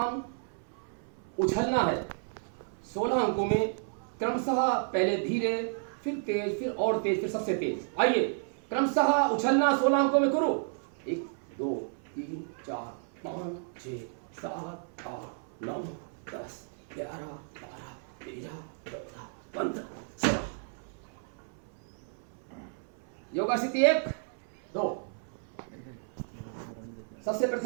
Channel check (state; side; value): silent; left; 56 dB below the other